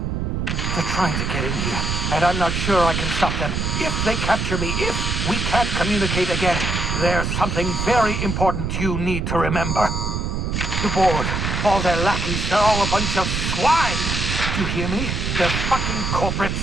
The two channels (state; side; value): noise; right; rumble, 1 dB below the sound